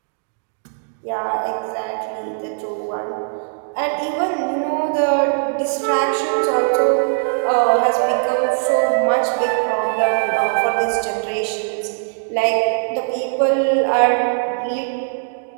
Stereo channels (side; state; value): left; silent; digital silence